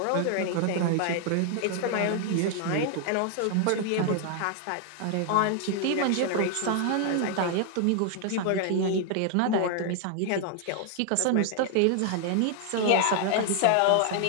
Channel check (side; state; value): both; different; correlation 0.00